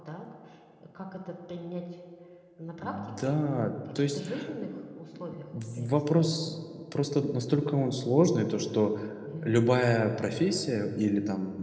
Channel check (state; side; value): identical; both; correlation 1.00